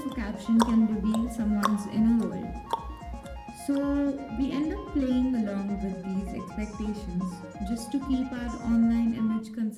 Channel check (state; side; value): identical; both; correlation 1.00